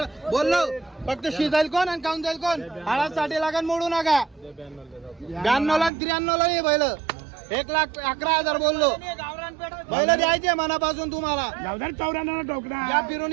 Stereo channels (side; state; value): left; drops out; at 5.9 s